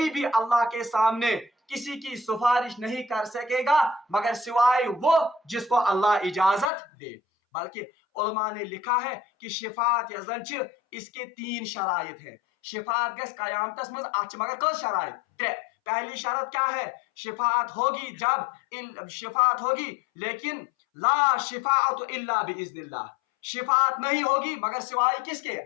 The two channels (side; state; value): right; drops out; at 6.7 s